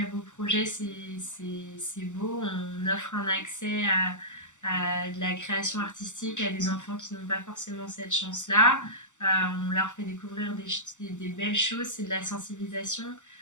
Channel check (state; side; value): late; right; 0.85 ms